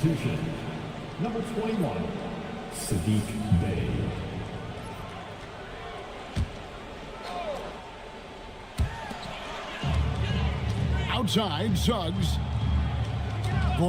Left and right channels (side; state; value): both; identical; correlation 1.00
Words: Number 21, Sadiq Bey. Outside, Suggs.